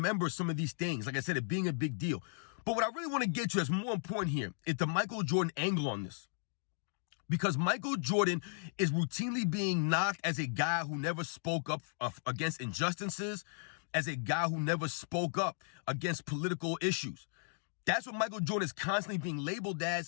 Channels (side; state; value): right; silent; digital silence